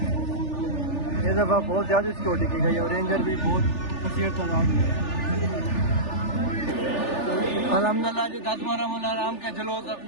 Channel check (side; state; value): right; late; 3.4 ms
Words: इस दफा बहुत ज्यादा सिक्योरिटी की गई और रेंजर भी बहुत कसीर तादाद में है। अल्हम्दुलिल्लाह जी 10 रमज़ान आराम के जुलूस